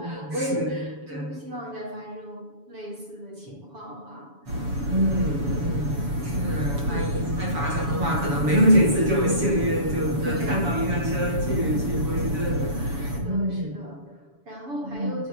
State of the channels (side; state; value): left; late; 7.1 ms